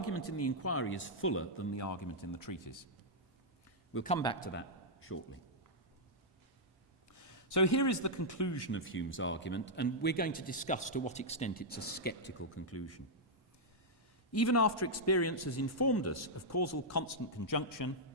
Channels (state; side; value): normal; both; correlation -0.07